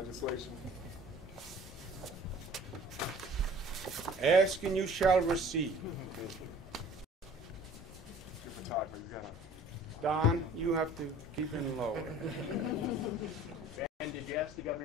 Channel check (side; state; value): both; normal; correlation 0.49